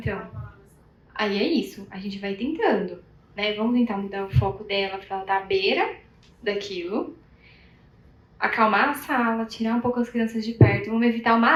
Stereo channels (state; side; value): identical; both; correlation 1.00